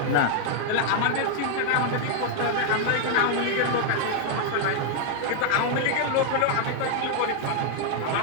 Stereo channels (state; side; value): different; both; correlation 0.00